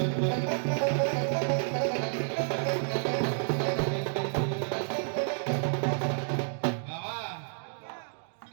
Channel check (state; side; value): silent; left; 58 dB below the other